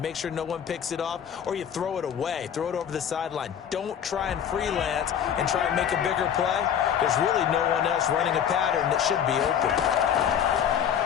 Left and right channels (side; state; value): right; quieter; 8.8 dB